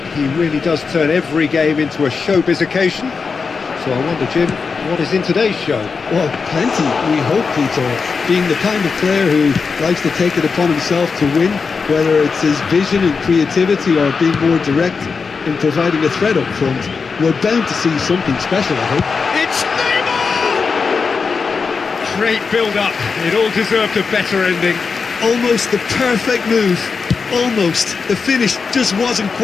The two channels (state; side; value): quieter; right; 5.1 dB